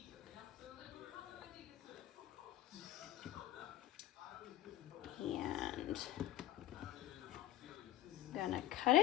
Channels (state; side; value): quieter; right; 14.0 dB